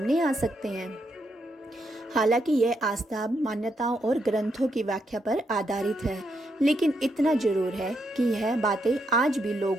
आ सकते हैं। हालांकि यह आस्था मान्यताओं और ग्रंथों की व्याख्या पर आधारित है, लेकिन इतना जरूर है कि यह बातें आज भी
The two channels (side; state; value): both; normal; correlation 0.79